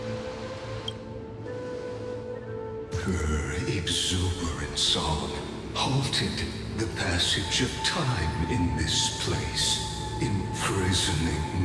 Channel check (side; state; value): both; identical; correlation 1.00